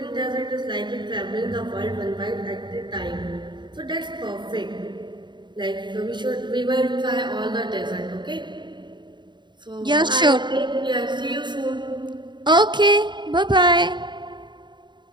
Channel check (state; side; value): late; left; 0.22 ms